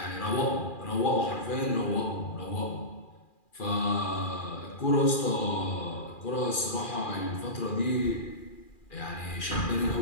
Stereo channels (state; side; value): late; right; 2.4 ms